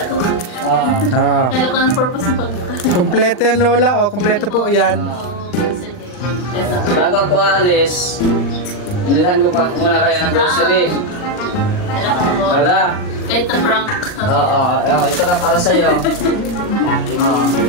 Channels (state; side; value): late; right; 39 ms